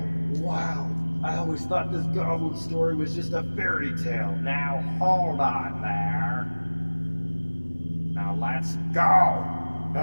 Wow. I always thought this goblin story was just a fairy tale. Now hold on there. Now let's go.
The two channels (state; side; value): inverted; both; correlation -1.00